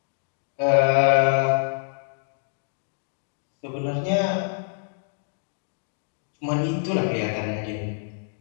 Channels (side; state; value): right; silent; digital silence